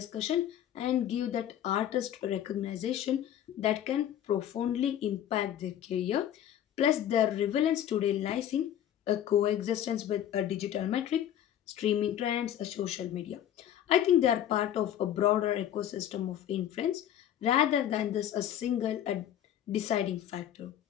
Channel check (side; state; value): right; quieter; 10.7 dB